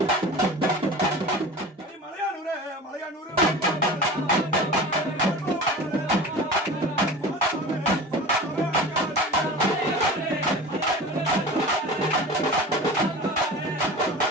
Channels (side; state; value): both; normal; correlation 0.35